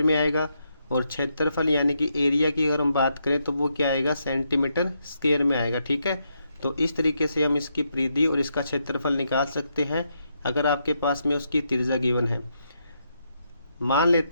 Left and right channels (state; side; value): inverted; both; correlation -0.80